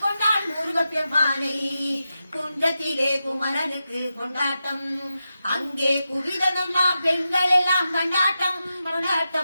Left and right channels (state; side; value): inverted; both; correlation -0.89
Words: கொண்டாள் முருகப்பெருமானை. குன்றத்திலே குமரனுக்கு கொண்டாட்டம், அங்கே குவிதனம்மா பெண்கள் எல்லாம் கொண்டாட்டம்